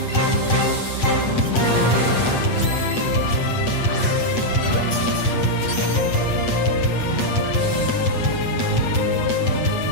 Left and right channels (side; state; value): right; late; 8.2 ms